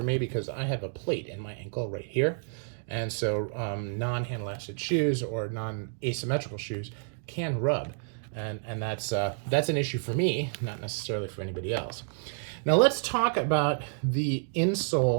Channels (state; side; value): silent; left; 58 dB below the other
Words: me because I have a plate in my ankle right here. And so non-hand lasted shoes or non-asymmetrical shoes can rub. And that's an issue for me, not necessarily for anybody else. Now let's talk about the